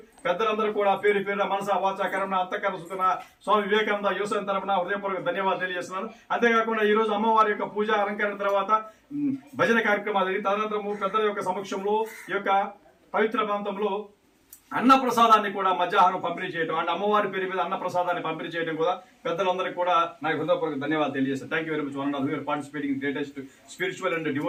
పెద్దలందరూ కూడా పేరు పేరున మనసా వాచా కర్మణ అంతఃకరణ స్వామి వివేకానంద యువసేన తరపున హృదయపూర్వక ధన్యవాదాలు తెలియజేస్తున్నాను. అంతేకాకుండా ఈ రోజు అమ్మవారి యొక్క పూజ అలంకరణ తర్వాత భజన కార్యక్రమాలు, తదనంతరము పెద్దల యొక్క సమక్షంలో ఈ యొక్క పవిత్ర ప్రాంతంలో అన్న ప్రసాదాన్ని కూడా మధ్యాహ్నం పంపిణీ చేయడం అంటే అమ్మవారి పేరు మీద అన్న ప్రసాదాన్ని పంపిణీ చేయడం కూడా పెద్దలందరికీ కూడా నాకు హృదయపూర్వక ధన్యవాదాలు తెలియజేస్తాను. Thank you very much. One of your participating greatest spiritual and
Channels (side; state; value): both; identical; correlation 1.00